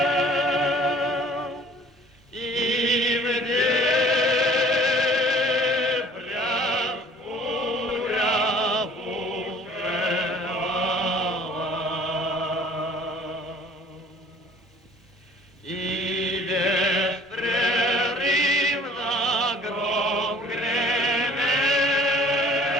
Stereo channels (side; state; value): both; normal; correlation 0.51